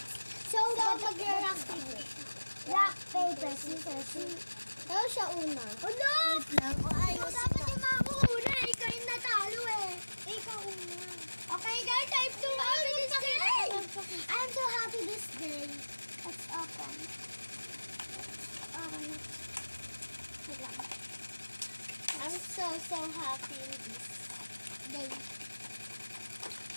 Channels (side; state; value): both; inverted; correlation -1.00